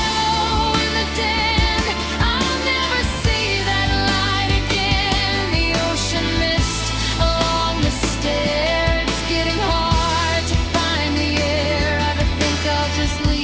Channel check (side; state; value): both; identical; correlation 1.00